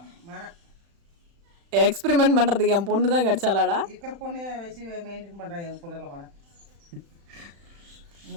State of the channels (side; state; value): left; late; 35 ms